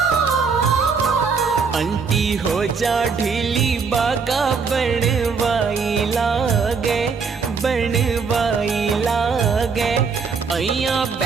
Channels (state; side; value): quieter; left; 5.3 dB